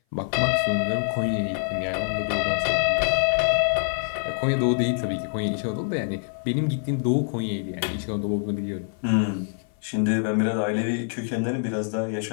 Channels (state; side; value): silent; right; 58 dB below the other